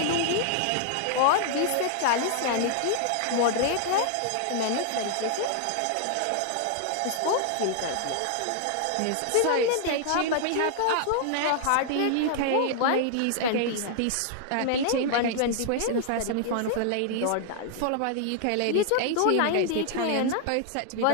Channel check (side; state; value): both; different; correlation 0.00